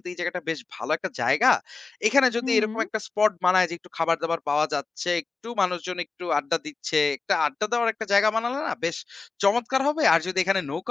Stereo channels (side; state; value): right; quieter; 4.3 dB